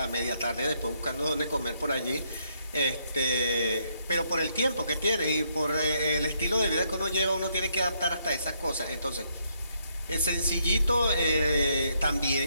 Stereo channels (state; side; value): inverted; both; correlation -0.74